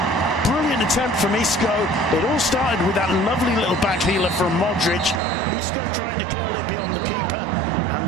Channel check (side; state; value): left; drops out; at 5.2 s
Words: Brilliant attempt from Isco. It all started with that lovely little back heeler from Modric. Isco trying to curl it beyond the keeper,